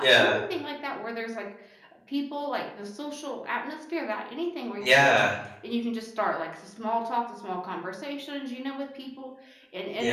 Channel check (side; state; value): both; identical; correlation 1.00